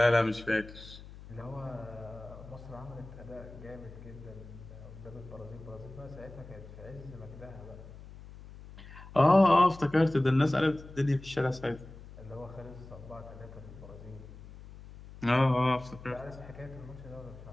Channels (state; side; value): noise; left; hum, 16 dB below the sound